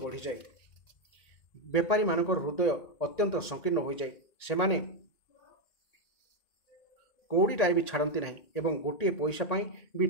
ବଢ଼ିଯାଏ। ବେପାରୀମାନଙ୍କର ହୃଦୟ ଅତ୍ୟନ୍ତ ସଂକୀର୍ଣ୍ଣ ହୋଇଯାଏ। ସେମାନେ କଉଡ଼ିଟାଏ ବି ଛାଡ଼ନ୍ତି ନାହିଁ ଏବଂ ଗୋଟିଏ ପଇସା ପାଇଁ ବି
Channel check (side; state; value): right; late; 1.9 ms